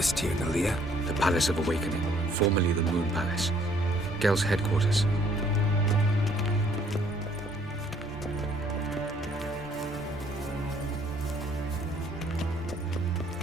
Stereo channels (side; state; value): both; normal; correlation 0.62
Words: Tirnalia? The Palace of Awakening, formerly the Moon Palace. Gel's headquarters.